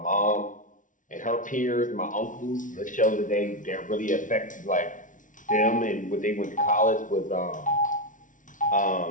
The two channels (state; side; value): late; right; 0.38 ms